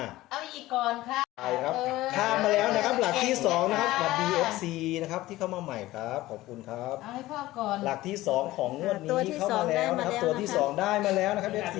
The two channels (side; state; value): right; quieter; 17.1 dB